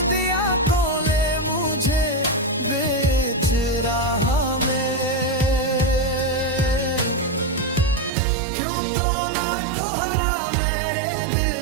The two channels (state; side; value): drops out; left; at 8.1 s